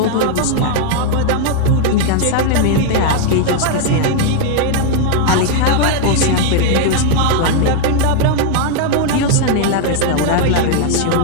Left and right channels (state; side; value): different; both; correlation 0.00